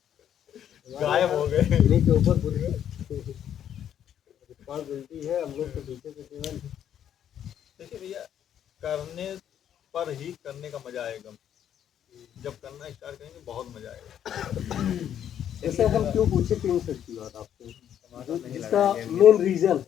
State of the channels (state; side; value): quieter; right; 9.8 dB